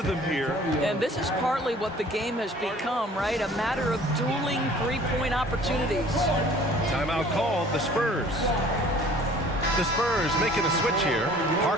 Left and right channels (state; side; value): normal; both; correlation 0.51